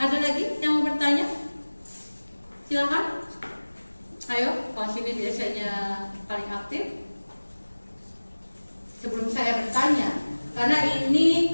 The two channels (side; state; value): both; inverted; correlation -1.00